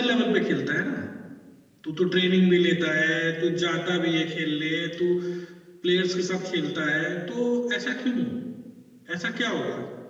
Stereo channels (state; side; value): identical; both; correlation 1.00